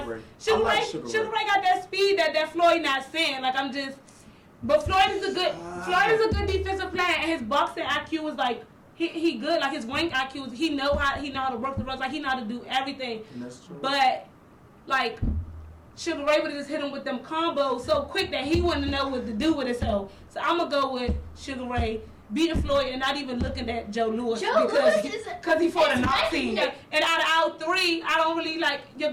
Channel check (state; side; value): identical; both; correlation 1.00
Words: Sugar Ray got that speed that Floyd not seeing. Like but Floyd is a good defensive player, and his boxing IQ was like he good. Like his ring IQ he know how to work the ropes. Like he know how to do everything. And that's true. But like Sugar Ray would have just hit him with them combos so quick that he wouldn't know what to do with himself. So I'm gonna go with Sugar Ray beating Floyd and not even looking at Joe Louis because he fought a Nazi. And out of our 3, I don't really like your